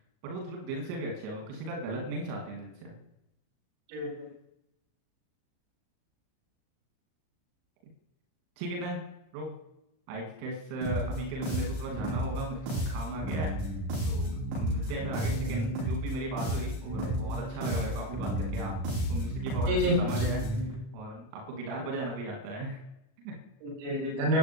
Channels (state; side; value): late; left; 37 ms